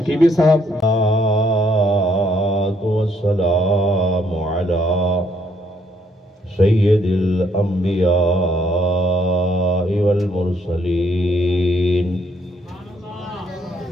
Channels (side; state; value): both; normal; correlation 0.70